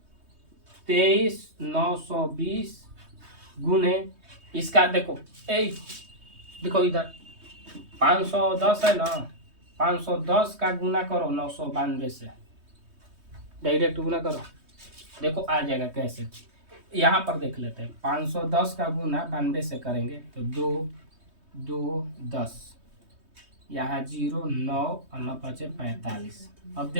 23,920 गुने इसका देखो देखो इधर 510 है ना 510 का गुना करो 992 से डायरेक्ट गुना करो देखो आ जाएगा कैसे। यहाँ पर देख लेते हैं 510 का गुना 92 से करेंगे तो 2 2 10 यहाँ 0 9 और 9 5 45। अब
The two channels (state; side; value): late; left; 3.2 ms